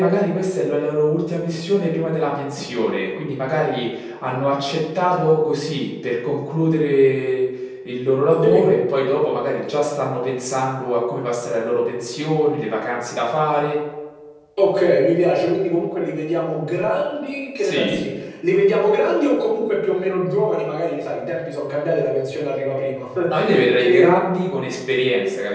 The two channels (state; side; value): identical; both; correlation 1.00